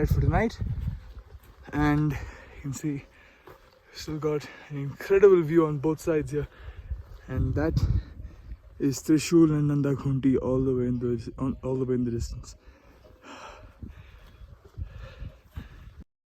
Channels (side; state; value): both; identical; correlation 1.00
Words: for tonight, and you can see still got an incredible view on both sides here, and that is Trishul and Nandakhunti all the way in the distance.